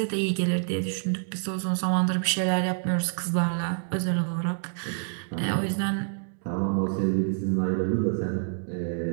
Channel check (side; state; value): left; silent; digital silence